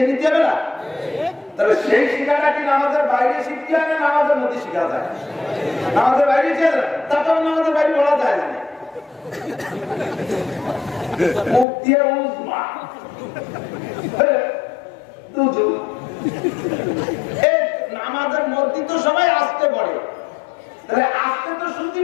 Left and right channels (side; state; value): right; drops out; at 11.7 s